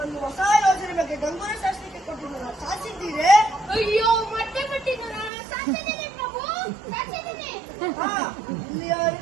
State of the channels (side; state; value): left; drops out; at 5.3 s